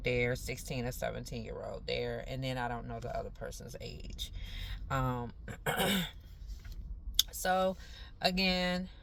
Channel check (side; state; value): both; identical; correlation 1.00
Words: there, 16 or 17-year-old there. And then I don't know the other person's age. Um, so again,